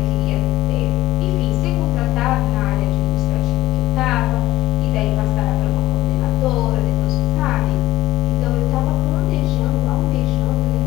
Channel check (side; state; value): right; quieter; 16.8 dB